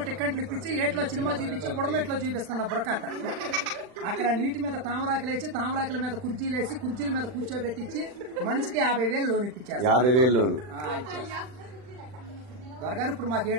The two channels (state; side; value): late; left; 40 ms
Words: టిక్కెట్లు ఇప్పించి ఏట్లో సినిమా చూపించి బుడమెట్లో చూపిస్తున్నా బురకట్ట. అక్కడ నీటి మీద తామరాకులు వేసి తామరాకుల మీద కుర్చీలు వేసి కుర్చీల మీద కూర్చోబెట్టించి మనిషికి 50,000 లోన్ ఇప్పించారు. 50,000 లోన్ దొరగారు ఇప్పుడు మాకు